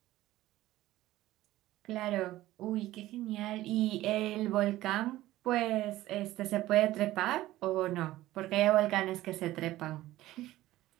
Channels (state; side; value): quieter; left; 15.9 dB